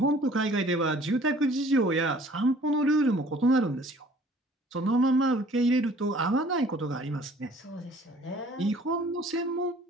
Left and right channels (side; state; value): both; normal; correlation 0.53